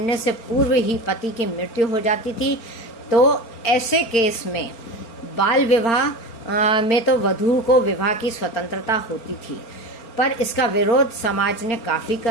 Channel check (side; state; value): right; late; 4.4 ms